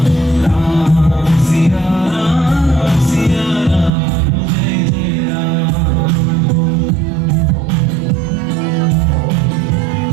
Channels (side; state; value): left; drops out; at 3.9 s